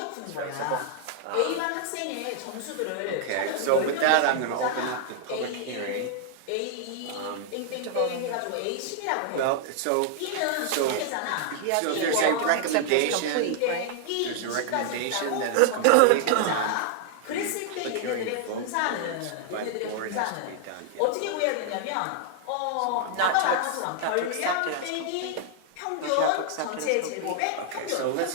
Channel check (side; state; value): both; different; correlation 0.00